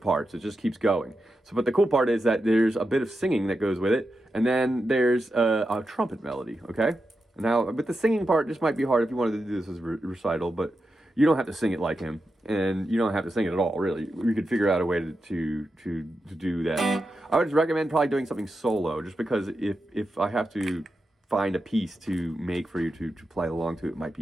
It just keeps going. So, but the cool part is that there's a bit of singing that goes with it, and then there's a trumpet melody, okay? Now, but the singing part just might be hard if you wanted to do this as a recital, but you don't have to sing it like him, and you don't have to sing it at all, really. We could figure out a way to do that. I would recommend probably doing something solo, just because if I have to find a piece to make for you to play along to, it might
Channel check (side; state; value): both; normal; correlation 0.88